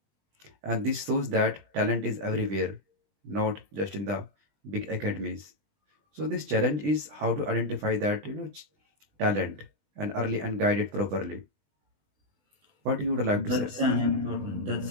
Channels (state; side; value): late; left; 20 ms